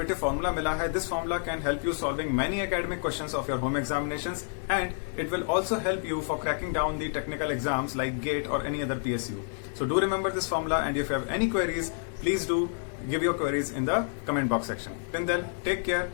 फॉर्मूला मिला है, this formula can help you solving many academic questions of your home examinations and it will also help you for cracking down the technical exams like GATE or any other PSU. So do remember this formula and if you have any queries, please do give your queries in the comment box section. Till then, take care.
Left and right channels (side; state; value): right; silent; 59 dB below the other